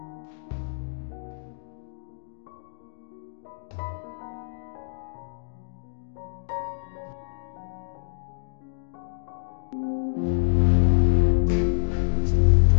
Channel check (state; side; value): silent; right; digital silence